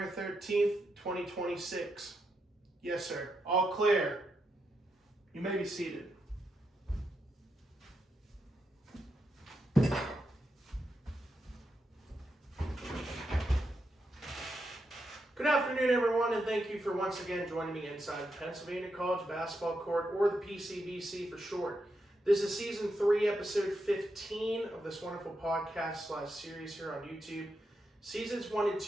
13th, 2026. Yes, sir. All clear. You may be seated. Good afternoon, everyone, and thank you for once again joining me inside the Pennsylvania College Basketball Court, or the PCBC for short. This is Season 3, Episode 15 of this wonderful podcast/series here on YouTube. Seasons 1 and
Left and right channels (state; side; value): normal; both; correlation 0.84